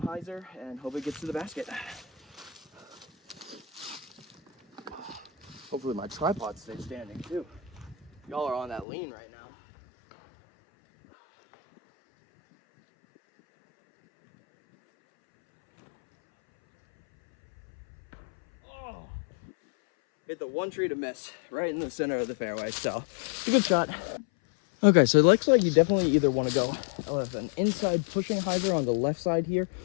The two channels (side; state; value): right; drops out; at 8.8 s